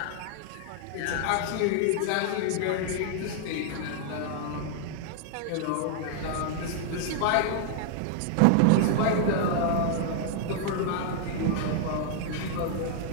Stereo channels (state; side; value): different; both; correlation 0.00